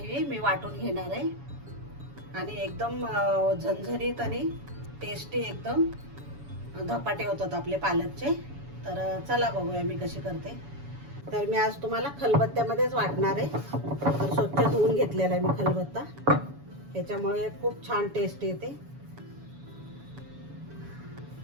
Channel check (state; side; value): late; left; 7.1 ms